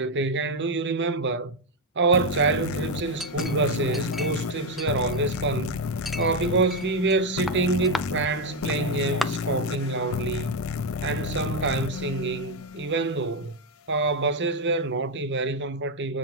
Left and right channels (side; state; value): both; normal; correlation 0.05